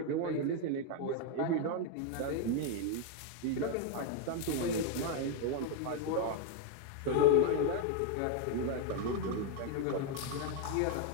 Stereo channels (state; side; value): different; both; correlation 0.01